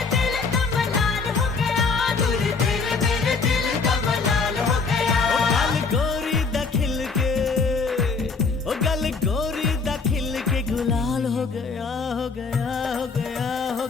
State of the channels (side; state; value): right; quieter; 4.6 dB